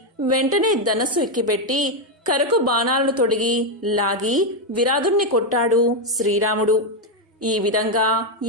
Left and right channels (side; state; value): both; normal; correlation 0.04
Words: వెంటనే ధనస్సు ఎక్కిపెట్టి కరకు బాణాలను తొడిగి లాగి విరాధుణ్ణి కొట్టాడు శ్రీరాముడు. ఈ విధంగా